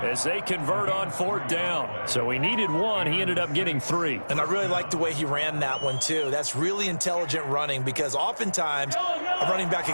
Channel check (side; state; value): both; inverted; correlation -1.00